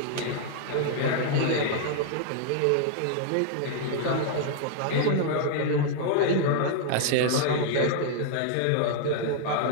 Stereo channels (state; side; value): different; both; correlation 0.00